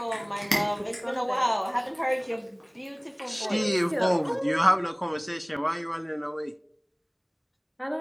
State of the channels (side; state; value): both; identical; correlation 1.00